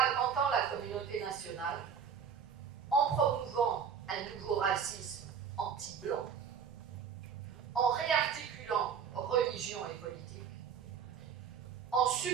la communauté nationale, en promouvant un nouveau racisme anti-blanc, en réarticulant religion et politique, en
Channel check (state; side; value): quieter; left; 7.1 dB